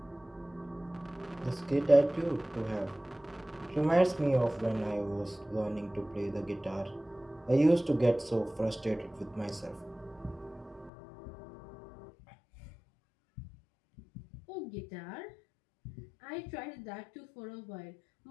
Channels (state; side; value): drops out; right; at 10.9 s